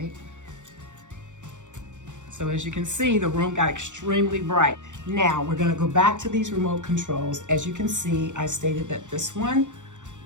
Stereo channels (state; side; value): late; left; 0.85 ms